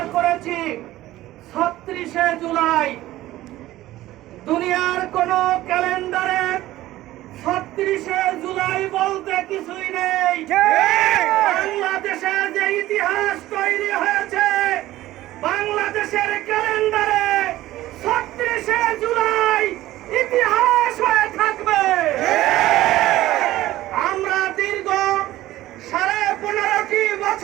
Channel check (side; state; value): left; quieter; 15.7 dB